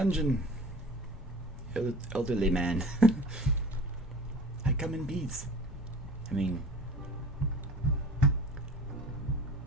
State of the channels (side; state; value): both; normal; correlation 0.41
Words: Elderly man. I come in peace. I mean...